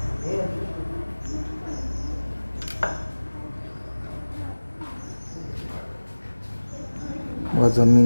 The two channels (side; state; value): both; inverted; correlation -1.00